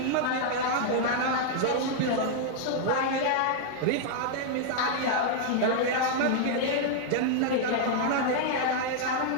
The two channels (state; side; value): different; both; correlation 0.00